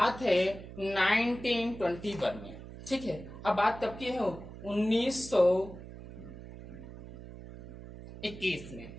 है 1921 में। ठीक है, अब बात कब की है, 1921 में।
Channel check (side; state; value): right; noise; hum, 14 dB below the sound